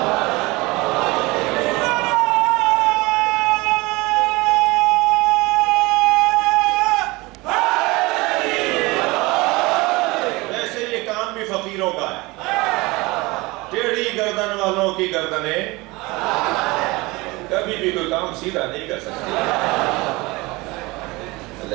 گردن والوں کی گردنیں کبھی بھی کوئی کام سیدھا نہیں کر سکتی،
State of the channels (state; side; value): quieter; left; 22.9 dB